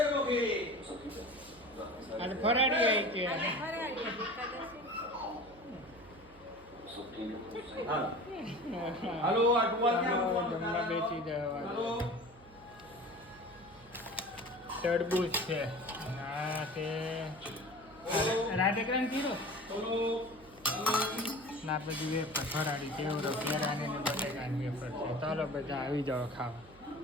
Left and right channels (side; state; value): right; noise; hum, 23 dB below the sound